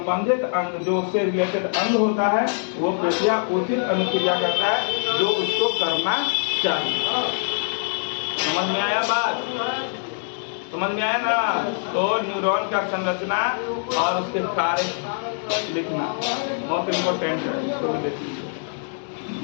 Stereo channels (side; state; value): right; silent; digital silence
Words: अंग, जो उससे रिलेटेड अंग होता है, वो पेशिया उचित अनुक्रिया करता है जो उसको करना चाहिए। समझ में आया बात? समझ में आया ना? तो न्यूरॉन का संरचना और उसके कार्य लिखना बहुत इम्पोर्टेंट है, इसको भी देख लीजिए।